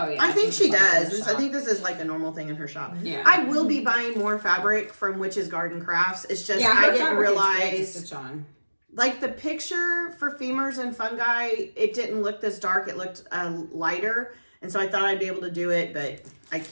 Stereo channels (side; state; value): both; inverted; correlation -1.00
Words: yeah. I think she it's does. in the I shop. think this is like a normal thing in her shop. Yeah. I will be buying more fabric from Witch's Garden Crafts. It's just Yeah, I her didn't fabric is great to realize, stitch on. like the picture for femurs and fungi, it didn't look this dark. It looked lighter, and so I thought I'd be able to do it, but I